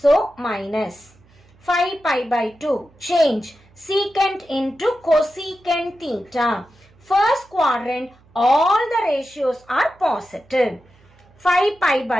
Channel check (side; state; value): right; noise; hum, 30 dB below the sound